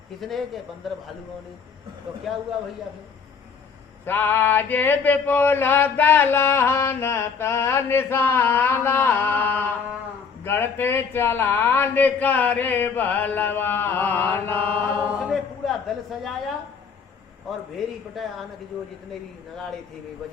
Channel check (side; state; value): right; quieter; 5.9 dB